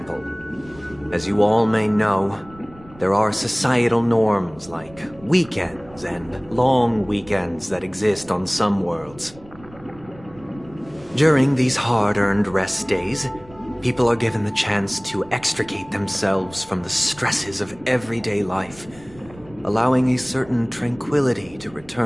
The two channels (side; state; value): right; noise; rumble, 22 dB below the sound